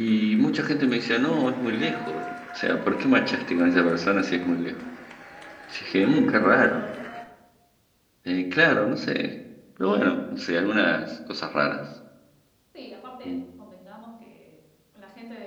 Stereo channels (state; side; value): identical; both; correlation 1.00